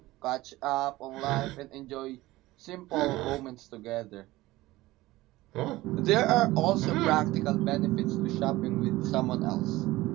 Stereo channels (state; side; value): quieter; left; 18.1 dB